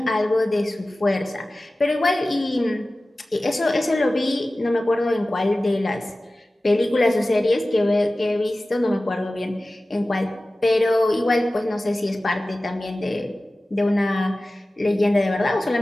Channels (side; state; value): both; normal; correlation 0.97